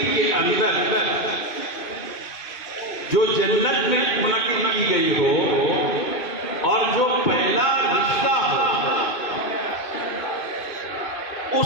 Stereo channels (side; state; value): right; late; 2.5 ms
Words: کے اندر جو جنت میں منعقد کی گئی ہو اور جو پہلا رشتہ ہو